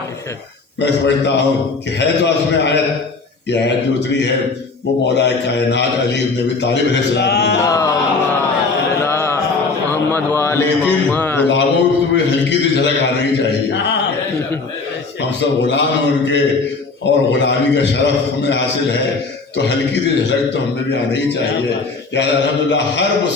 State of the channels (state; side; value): quieter; right; 4.1 dB